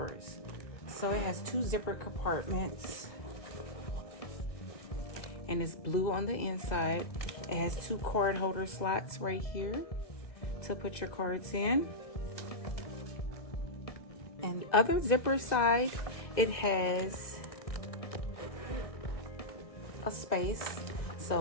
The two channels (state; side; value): late; right; 2.0 ms